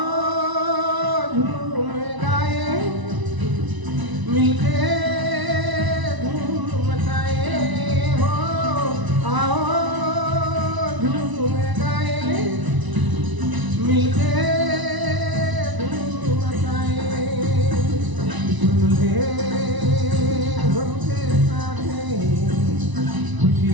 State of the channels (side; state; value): left; late; 1.0 ms